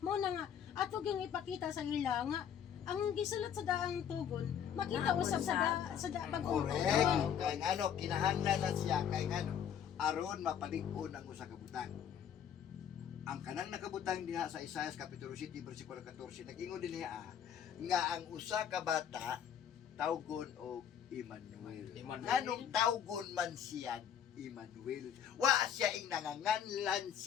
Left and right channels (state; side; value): quieter; right; 8.8 dB